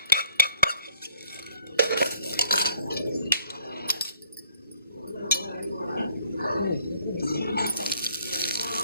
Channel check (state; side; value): inverted; both; correlation -0.63